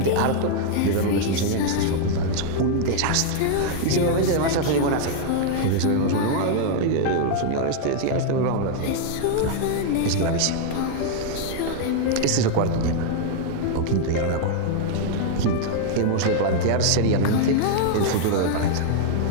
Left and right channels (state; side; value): different; both; correlation 0.00